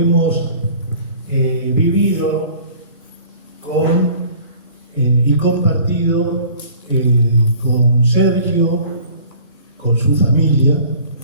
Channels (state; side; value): inverted; both; correlation -0.49